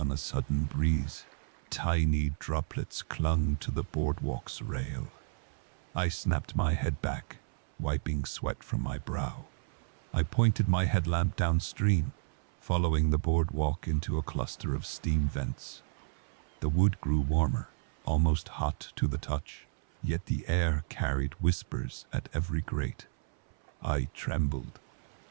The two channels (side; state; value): left; silent; 57 dB below the other